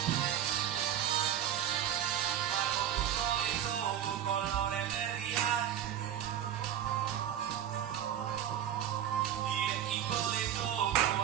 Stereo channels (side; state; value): left; quieter; 10.3 dB